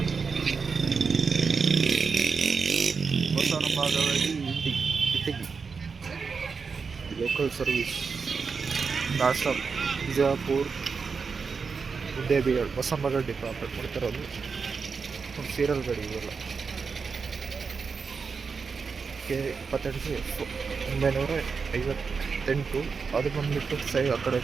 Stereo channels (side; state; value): left; quieter; 5.2 dB